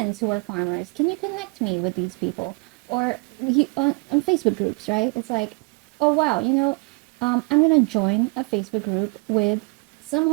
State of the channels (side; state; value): left; quieter; 32.6 dB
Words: who are farmers? Can you connect me with these people? Or on Facebook groups, right? It's like, oh wow, you know, I'm gonna join a Facebook group with some